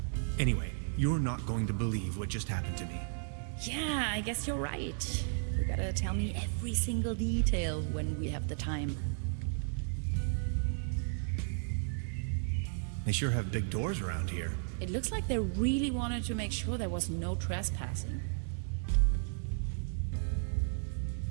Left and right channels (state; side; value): silent; left; digital silence